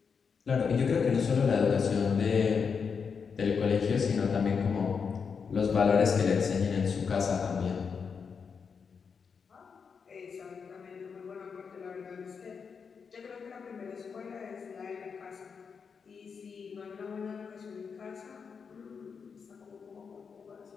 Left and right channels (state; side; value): quieter; right; 6.0 dB